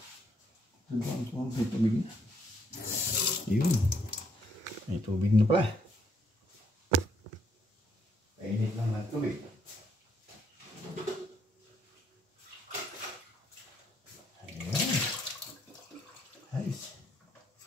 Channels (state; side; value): normal; both; correlation 0.72